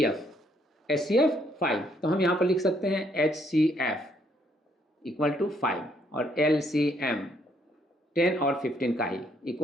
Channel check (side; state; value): both; normal; correlation 0.70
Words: 5, तो हम यहाँ पर लिख सकते हैं HCF इक्वल टू 5 और LCM 10 और 15 का ही